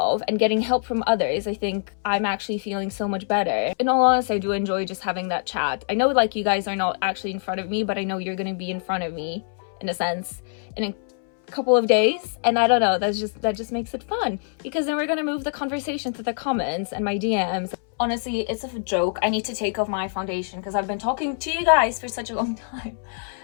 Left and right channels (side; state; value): right; silent; 61 dB below the other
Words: and getting help from others, I think I'm actually feeling so much better. In all honesty, I do enjoy just having that chat. I know like you guys are not actually in front of me, but I know you're going to be in front of me in a sense in a couple of days, and I don't know, that just makes it fun because then we're gonna move the conversation to the comments and my DMs. Honestly, it's a joke. I need to take off my foundation because I've been talking to you guys for such a long time